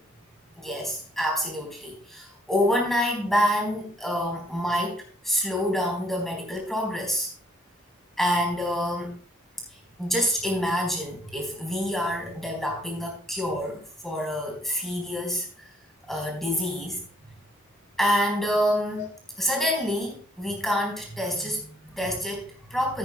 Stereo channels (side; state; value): both; normal; correlation 0.65